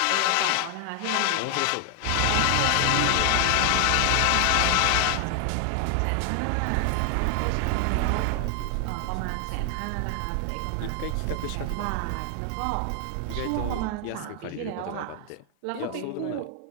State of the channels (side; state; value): both; different; correlation 0.00